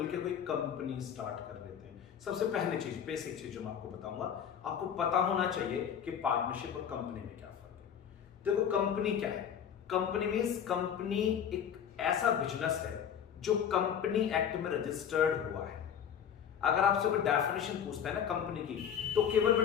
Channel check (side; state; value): right; quieter; 8.4 dB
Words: कोई कंपनी स्टार्ट कर लेते हैं. सबसे पहले चीज, बेसिक चीज जो मैं आपको बताऊंगा, आपको पता होना चाहिए कि पार्टनरशिप और कंपनी में क्या फर्क है. देखो, कंपनी क्या है? कंपनी मींस कंपनी एक ऐसा बिजनेस है जो कंपनी एक्ट में रजिस्टर्ड हुआ है. अगर आपसे कोई डेफिनेशन पूछता है ना कंपनी की, तो केवल